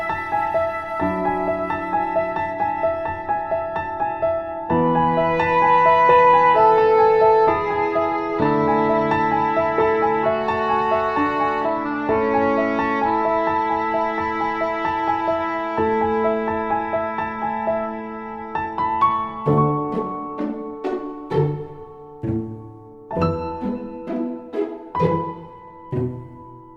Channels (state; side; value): identical; both; correlation 1.00